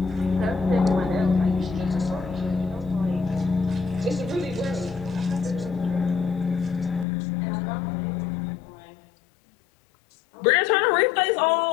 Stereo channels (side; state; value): right; drops out; at 7.1 s